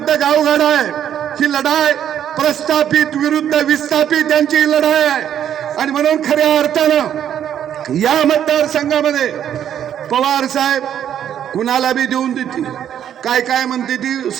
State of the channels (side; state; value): left; quieter; 9.8 dB